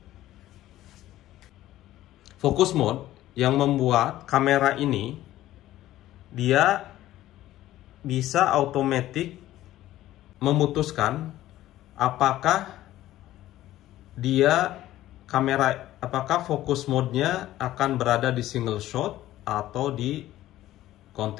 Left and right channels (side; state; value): right; quieter; 14.5 dB